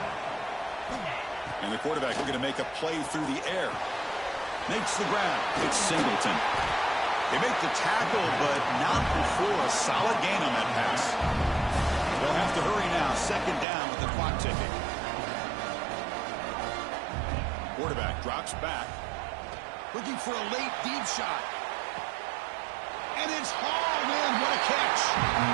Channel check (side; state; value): left; drops out; at 13.7 s